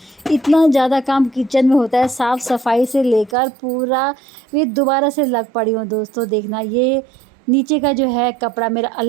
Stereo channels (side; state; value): left; drops out; at 3.4 s